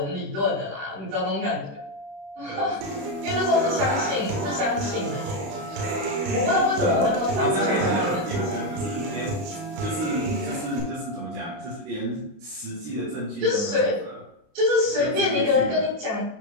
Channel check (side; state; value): left; late; 29 ms